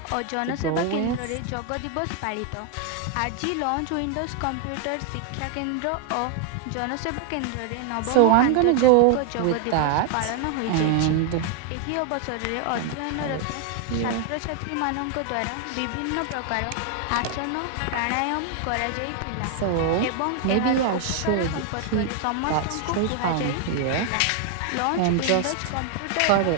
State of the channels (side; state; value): both; different; correlation 0.00